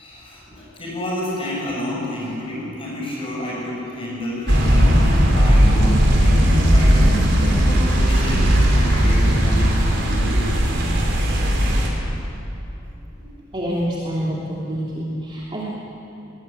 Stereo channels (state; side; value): normal; both; correlation 0.88